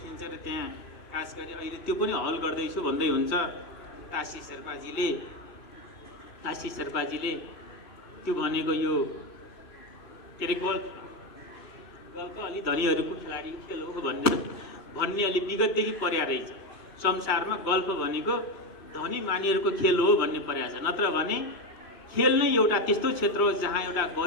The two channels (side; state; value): right; late; 2.7 ms